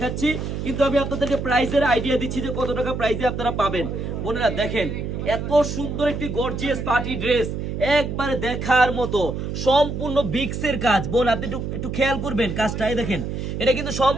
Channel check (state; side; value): noise; right; hum, 4 dB below the sound